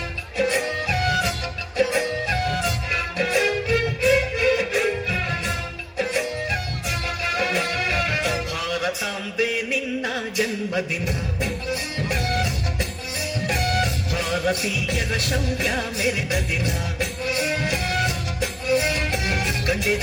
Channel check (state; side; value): identical; both; correlation 1.00